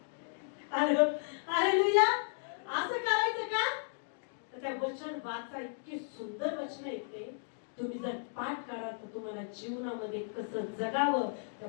हालेलुया. असं करायचं का? तर त्या वचन वाचा. इतकी सुंदर वचन येते. तुम्ही जर पाठ करा तर तुम्हाला जीवनामध्ये कसं जगावं त्या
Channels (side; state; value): right; silent; digital silence